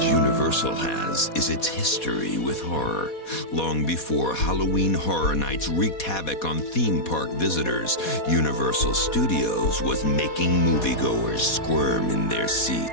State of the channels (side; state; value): right; late; 4.2 ms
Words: Universal has is its history with horror. Long before Halloween Horror Nights wreaked havoc on theme park visitors, Universal Studios was making moviegoers squirm in their